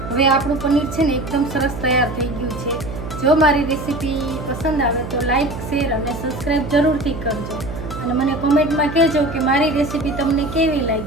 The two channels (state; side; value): noise; right; hum, 9 dB below the sound